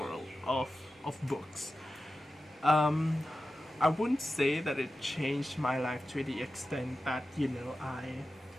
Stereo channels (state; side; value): normal; both; correlation 0.93